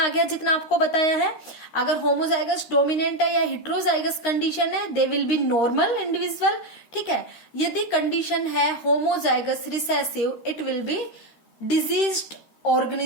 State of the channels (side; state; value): right; late; 13 ms